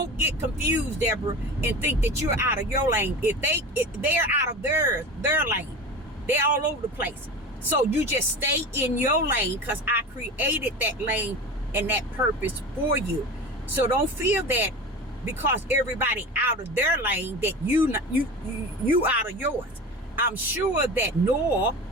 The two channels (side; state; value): both; normal; correlation 0.31